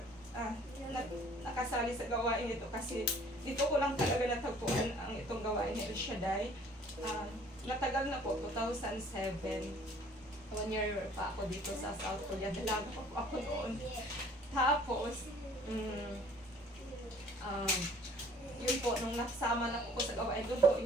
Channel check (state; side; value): normal; both; correlation 0.54